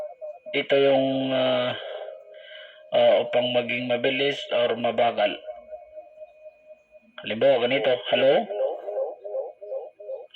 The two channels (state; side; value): identical; both; correlation 1.00